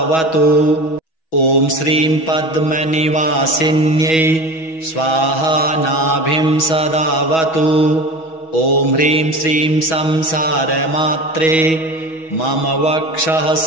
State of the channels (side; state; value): right; late; 6.2 ms